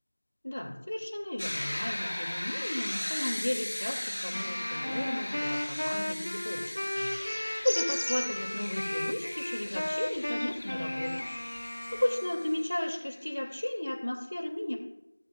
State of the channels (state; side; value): inverted; both; correlation -1.00